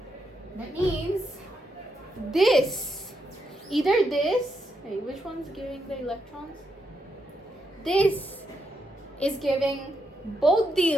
That means this, either this, hey, which one's giving the electrons? This is giving both the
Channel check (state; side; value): normal; both; correlation 0.81